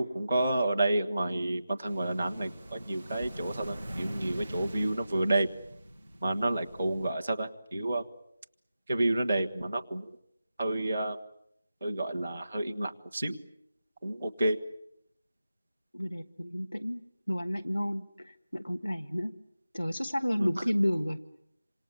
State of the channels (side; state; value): both; inverted; correlation -0.92